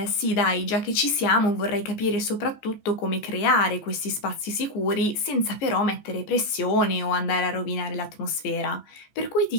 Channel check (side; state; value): right; late; 14 ms